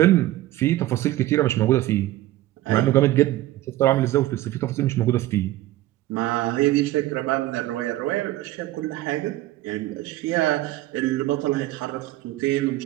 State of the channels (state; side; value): quieter; left; 15.9 dB